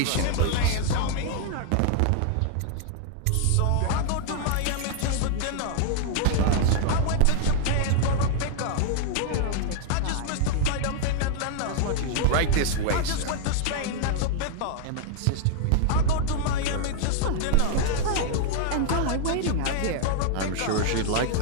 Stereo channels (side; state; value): both; different; correlation 0.00